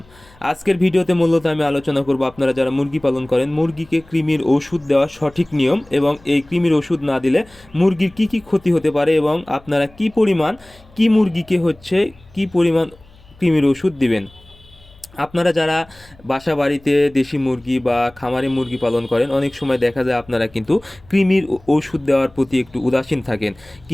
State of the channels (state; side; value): noise; left; hum, 27 dB below the sound